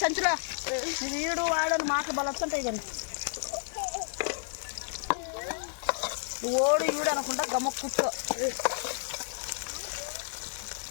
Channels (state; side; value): silent; right; 57 dB below the other